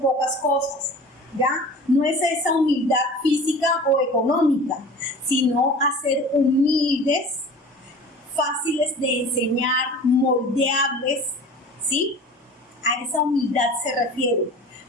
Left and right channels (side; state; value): both; normal; correlation 0.40